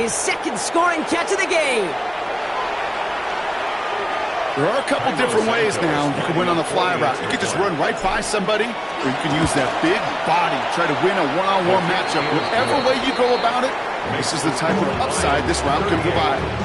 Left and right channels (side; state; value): both; identical; correlation 1.00